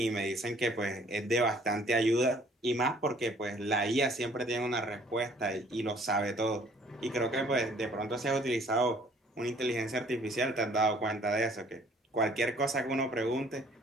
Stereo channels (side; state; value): both; normal; correlation 0.57